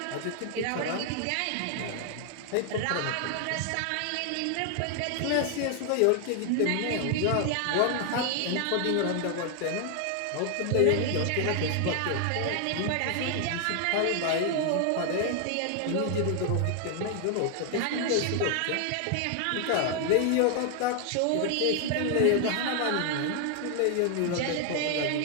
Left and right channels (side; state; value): both; different; correlation 0.00